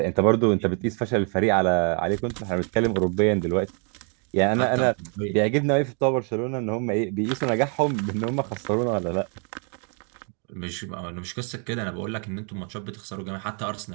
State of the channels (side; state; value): left; quieter; 39.4 dB